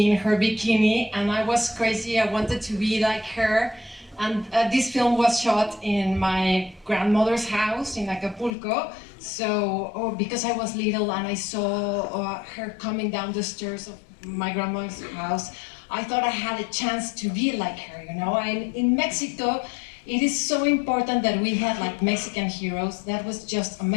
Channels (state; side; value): drops out; right; at 8.5 s